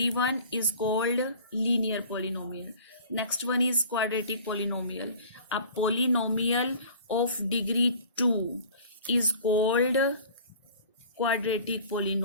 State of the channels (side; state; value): both; inverted; correlation -0.45